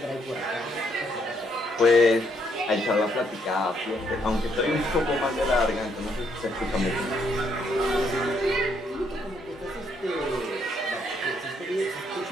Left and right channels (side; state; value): both; normal; correlation 0.72